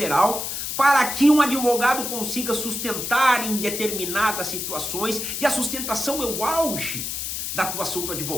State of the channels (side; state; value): left; noise; hiss, 4 dB below the sound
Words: para que um advogado consiga sustentar em determinadas situações, e a sustentação é o auge da atuação do